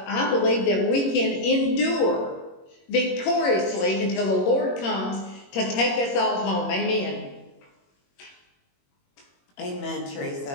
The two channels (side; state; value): right; late; 21 ms